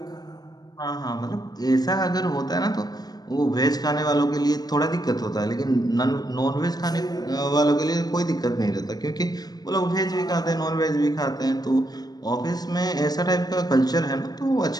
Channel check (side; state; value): right; late; 0.19 ms